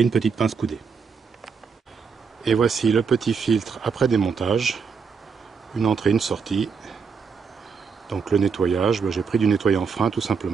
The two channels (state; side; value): quieter; left; 5.7 dB